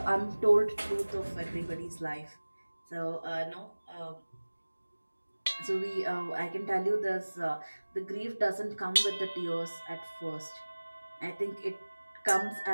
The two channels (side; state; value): both; inverted; correlation -1.00